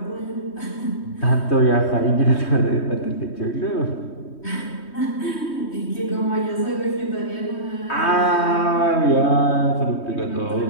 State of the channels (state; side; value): late; right; 3.2 ms